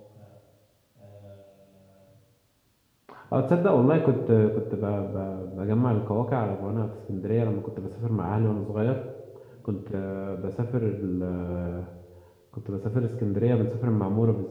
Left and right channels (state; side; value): identical; both; correlation 1.00